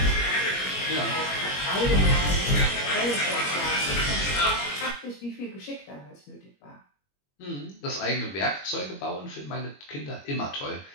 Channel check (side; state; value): right; late; 21 ms